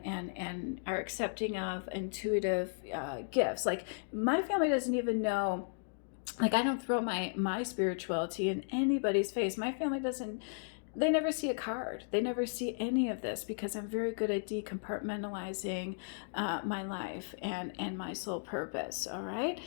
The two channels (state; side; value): silent; right; digital silence